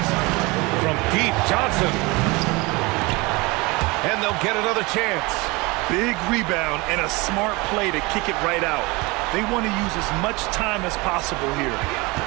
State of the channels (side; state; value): left; quieter; 24.8 dB